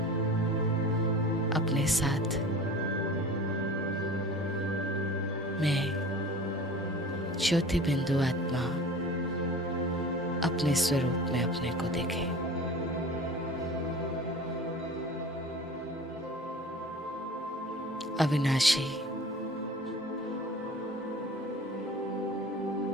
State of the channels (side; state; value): both; normal; correlation 0.40